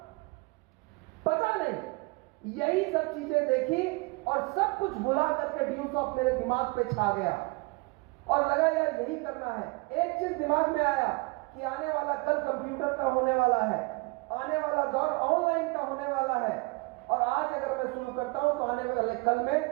पता नहीं, यही सब चीजें देखी और सब कुछ भुला करके व्यूसॉफ्ट मेरे दिमाग पे छा गया और लगा यार यही करना है। एक चीज दिमाग में आया कि आने वाला कल कंप्यूटर का होने वाला है, आने वाला दौर ऑनलाइन का होने वाला है, और आज अगर मैं शुरू करता हूं तो आने वाले कल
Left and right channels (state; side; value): quieter; left; 26.0 dB